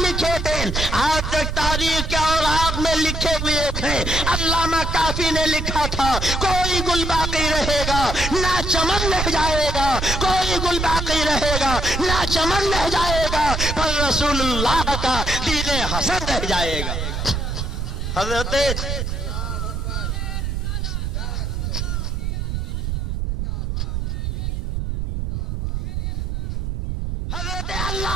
تھے آج تک تاریخ کے اوراق میں لکھے ہوئے تھے۔ علامہ کافی نے لکھا تھا، کوئی گل باقی رہے گا نہ چمن رہ جائے گا، کوئی گل باقی رہے گا نہ چمن رہ جائے گا، پر رسول اللہ کا دین حسن رہ جائے گا۔ حضرت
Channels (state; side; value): noise; right; rumble, 2 dB below the sound